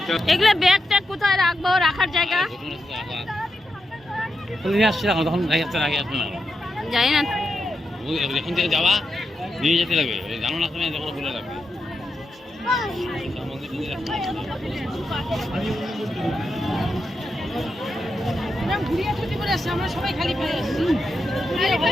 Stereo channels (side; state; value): both; normal; correlation 0.86